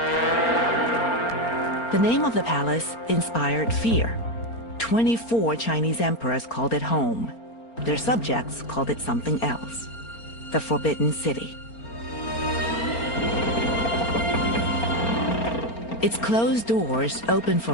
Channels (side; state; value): right; late; 4.4 ms